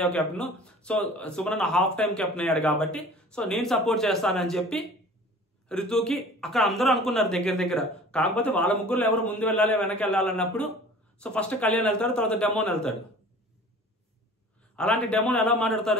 captain, so Suman half time captain అయ్యాడు కాబట్టి సో నేను సపోర్ట్ చేస్తానని చెప్పి రితుకి అక్కడ అందరూ అనుకున్నారు దగ్గర. కాకపోతే వాళ్ళ ముగ్గురులో ఎవరు ముందు వెళ్ళాలి వెనక్కి వెళ్ళాలన్నప్పుడు సో ఫస్ట్ కళ్యాణ్ వెళ్తాడు, తర్వాత డెమోన్ వెళ్తాడు. అలాంటి డెమోన్ ఎలా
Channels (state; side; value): normal; both; correlation 0.45